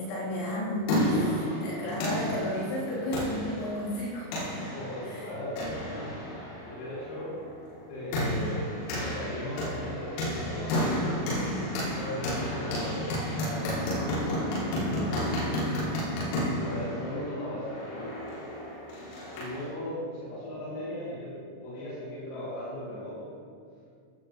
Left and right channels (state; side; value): late; right; 38 ms